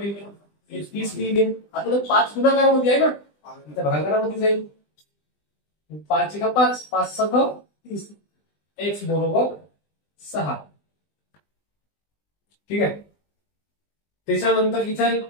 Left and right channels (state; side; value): late; right; 20 ms